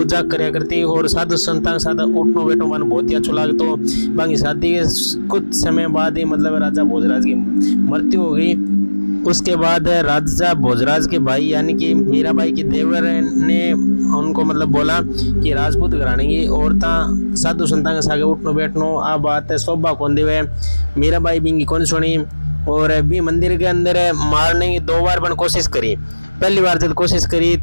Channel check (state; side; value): inverted; both; correlation -1.00